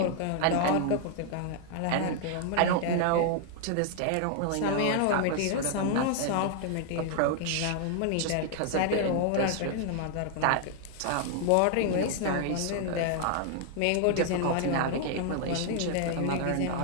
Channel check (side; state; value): both; different; correlation 0.00